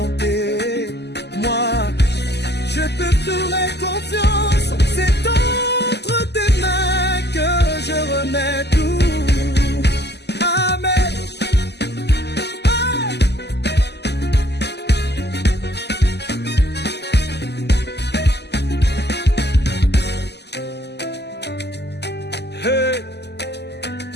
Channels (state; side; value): late; right; 0.49 ms